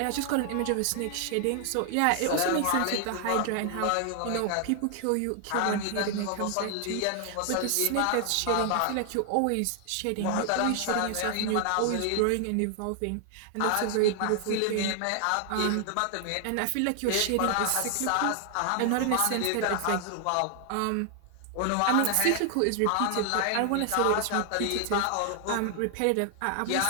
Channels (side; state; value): both; different; correlation 0.00